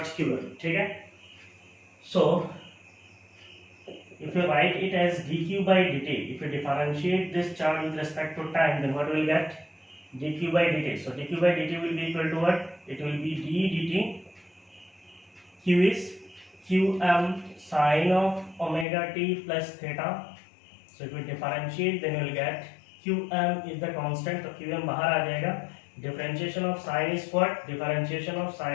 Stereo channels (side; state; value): right; drops out; at 18.9 s